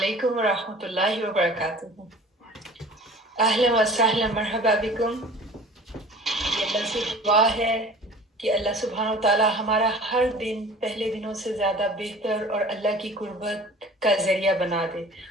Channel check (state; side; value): normal; both; correlation 0.44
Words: ورحمۃ اللہ وبرکاتہ. اہلا وسہلا مرحبا بکم. یہ اللہ سے دعا ہے کہ اللہ سبحانہ و تعالیٰ ہمارا ہر دن پہلے دنوں سے زیادہ بہتر اور اللہ کی قربت کا ذریعہ بنا دے،